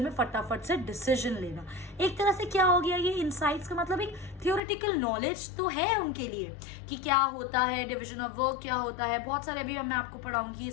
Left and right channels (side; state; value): right; drops out; at 4.6 s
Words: फटाफट से डिसीजन लेना। एक तरह से क्या हो गया, ये इनसाइट्स का मतलब एक थियोरेटिकल नॉलेज तो है उनके लिए कि क्या होता है, डिविजन ऑफ वर्क क्या होता है, बहुत सारे अभी मैं आपको पढ़ाऊंगी ये